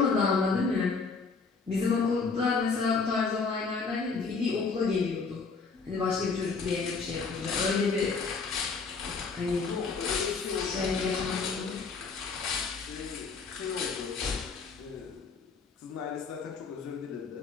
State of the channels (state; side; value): quieter; right; 4.7 dB